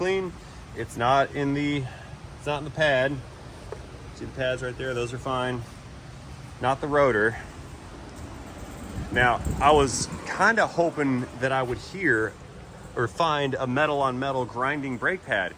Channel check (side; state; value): both; identical; correlation 1.00